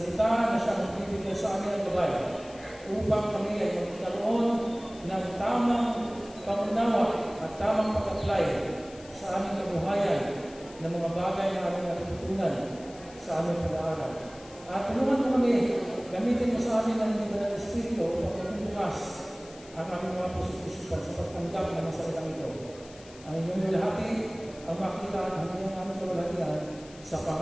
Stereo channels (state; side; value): noise; left; hiss, 21 dB below the sound